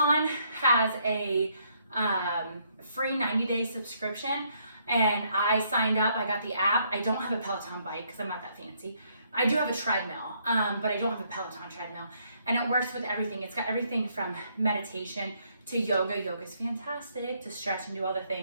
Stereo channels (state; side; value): inverted; both; correlation -0.71